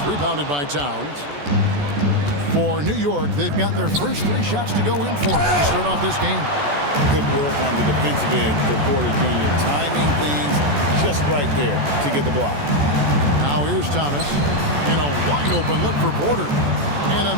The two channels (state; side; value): late; left; 14 ms